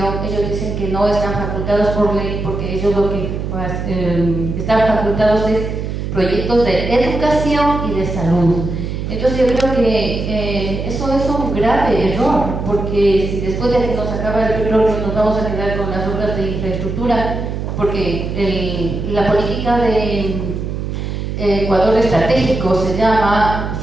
ellos dicen que no están facultados por ley, porque ellos lo que están facultados es proyectos de educación y de salud. Entonces yo creo que eso es un grave error, porque si después de que nos acaba el petróleo nos vamos a quedar con las obras de infraestructura, porque la política de Ecuador estratégico se llama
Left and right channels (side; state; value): right; noise; hum, 4 dB below the sound